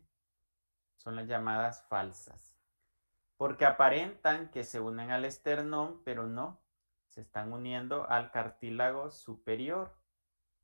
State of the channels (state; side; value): inverted; both; correlation -1.00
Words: son las llamadas falsas, porque aparentan que se unen al esternón, pero no, se están uniendo al cartílago superior,